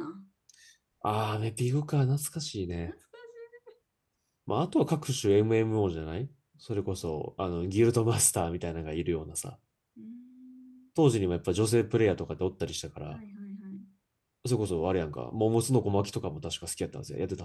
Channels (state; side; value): identical; both; correlation 1.00